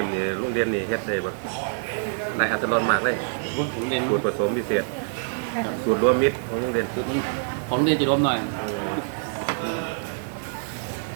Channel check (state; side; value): silent; left; digital silence